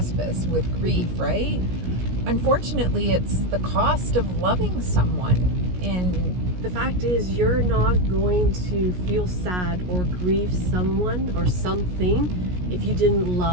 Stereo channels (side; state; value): left; late; 17 ms